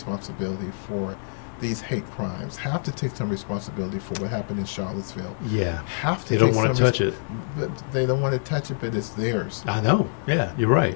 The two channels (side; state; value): right; silent; digital silence